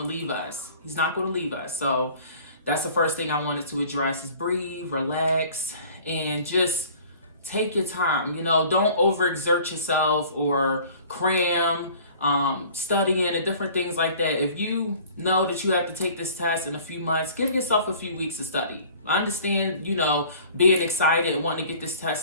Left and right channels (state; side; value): inverted; both; correlation -0.49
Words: leave us. He's not going to leave us. So that's the first thing I wanted to address, is breathe, relax, and just take your time. Don't overexert yourself or cram, studying and different things like that. If you know that you have to take this test in a few months, give yourself a few weeks to study. I understand, being excited and wanting to get this